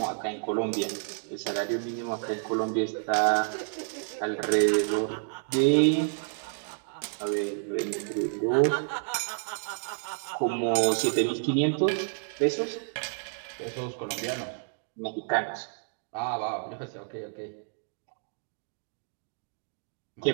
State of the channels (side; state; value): left; silent; digital silence